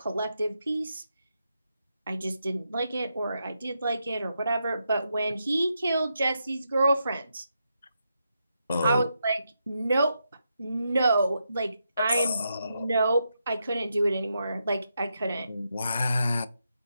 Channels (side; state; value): both; inverted; correlation -0.83